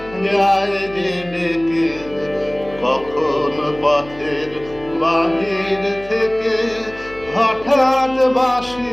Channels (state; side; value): noise; left; hum, 20 dB below the sound